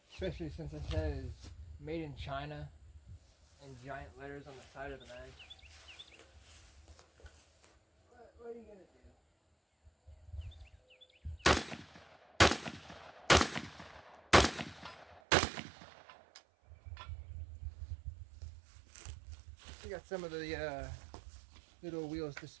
especially since it says made in China in giant letters on the side of the mag. What are you gonna do? We got some of the little wheels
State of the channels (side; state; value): left; drops out; at 15.2 s